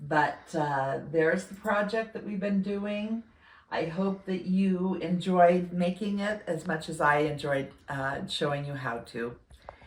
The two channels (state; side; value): identical; both; correlation 1.00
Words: but there's the project that we've been doing. I hope that you enjoyed making it as much as I enjoyed showing you how to.